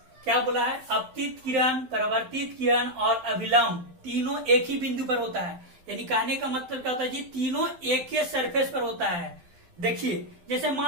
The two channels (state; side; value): late; left; 12 ms